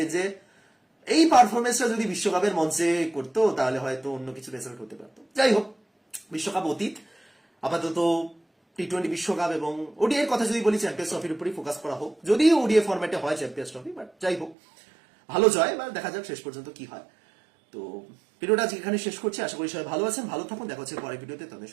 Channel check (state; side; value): drops out; left; at 14.6 s